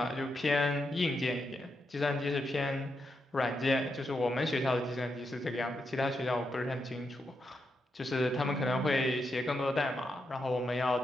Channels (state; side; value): normal; both; correlation 0.84